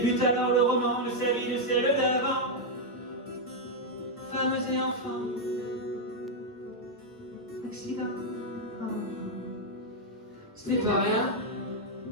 alors le roman de sa vie, de celle d'avant. Femmes et enfants, accidents. Ce n'est pas rien,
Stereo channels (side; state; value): both; normal; correlation -0.01